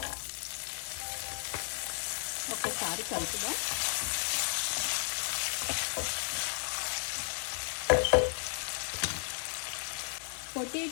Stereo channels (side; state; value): right; silent; 55 dB below the other